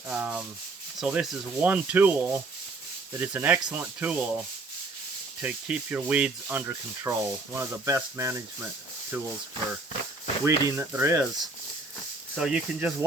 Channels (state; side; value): quieter; left; 3.4 dB